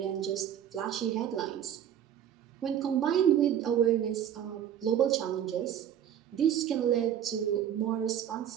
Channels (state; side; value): quieter; left; 9.9 dB